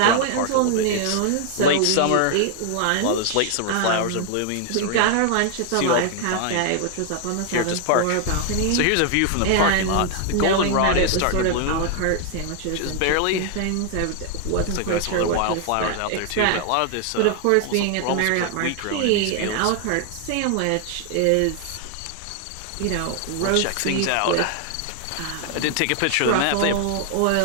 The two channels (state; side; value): different; both; correlation 0.00